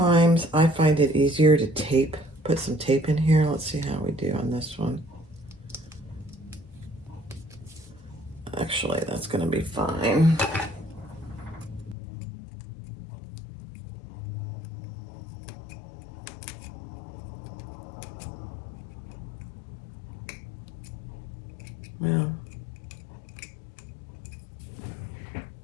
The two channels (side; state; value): right; drops out; at 12.0 s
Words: I find it easier to tape, put some tape in here. Let's see how we do on this one. Actually, that's gonna be fine. Yeah.